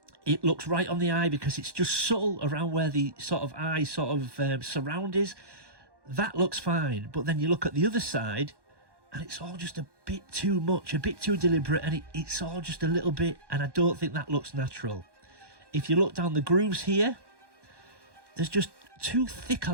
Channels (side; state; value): left; late; 1.1 ms